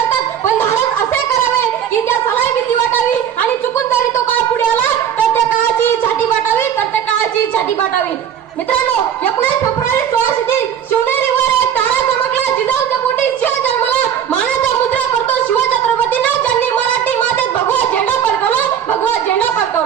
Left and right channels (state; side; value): quieter; left; 9.0 dB